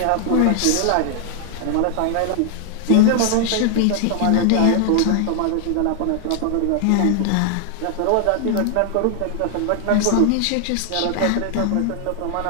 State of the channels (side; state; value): both; different; correlation 0.00